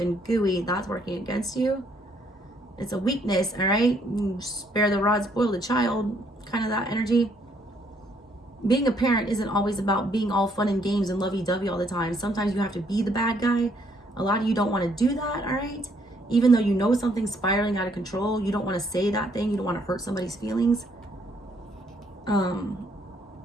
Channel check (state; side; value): normal; both; correlation 0.68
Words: gooey. That's working against you. It's a weakness, all right? You spare the rod, spoil the child, kind of that energy. Being a parent isn't always about being all fun and games and lovey-dovey all the time. Sometimes you have to be the bad guy. A lot of you don't want to do that, all right? Even though you know something's spiraling out of control, you don't want to say that thing. You don't want to hurt somebody's feelings.